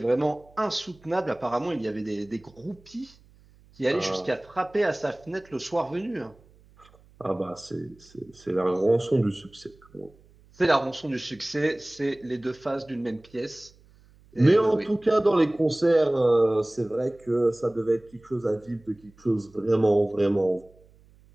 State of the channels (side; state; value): right; noise; hum, 28 dB below the sound